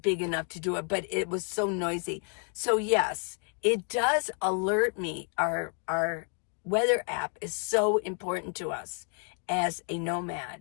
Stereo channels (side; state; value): right; quieter; 38.9 dB